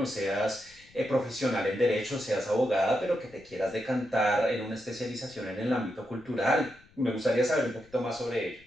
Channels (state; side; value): noise; left; rumble, 27 dB below the sound